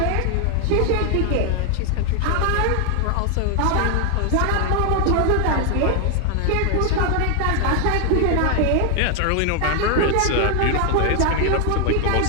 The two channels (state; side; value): different; both; correlation 0.00